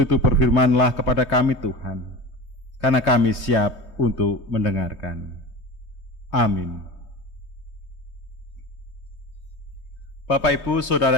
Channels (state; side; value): late; right; 3.2 ms